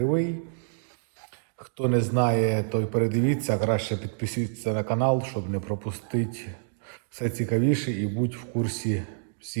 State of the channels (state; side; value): silent; left; digital silence